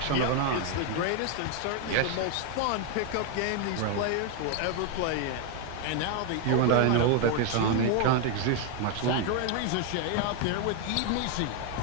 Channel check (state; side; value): different; both; correlation 0.01